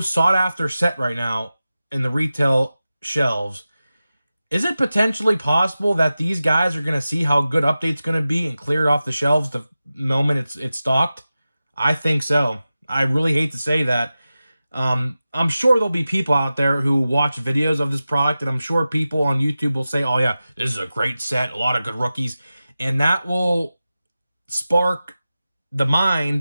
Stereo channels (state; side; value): inverted; both; correlation -0.95